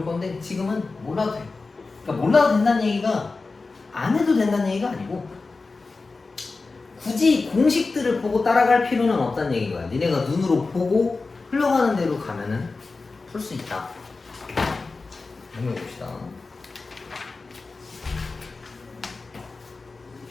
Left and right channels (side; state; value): right; quieter; 3.9 dB